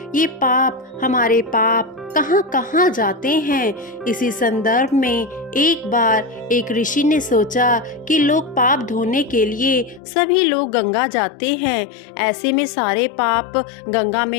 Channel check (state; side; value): drops out; right; at 10.0 s